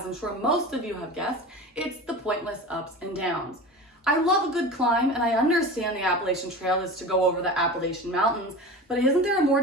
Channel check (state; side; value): normal; both; correlation 0.32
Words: I'm sure most of you have guessed, it's the pointless ups and downs. I love a good climb, and I understand the Appalachian Trail is to go over the Appalachian Mountains, but isn't there a more